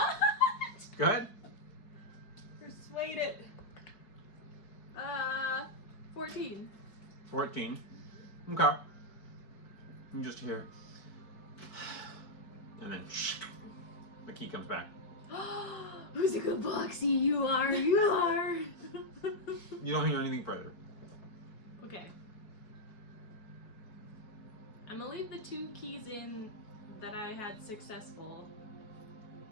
Go ahead. Persuade it. 14. 14. Okay. You just hear. And then the key comes back. Whimsical Boxy, you are, you are. You don't hear anything further. Okay. I'm gonna leave the 2 keys in that I had successful,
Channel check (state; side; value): late; right; 4.7 ms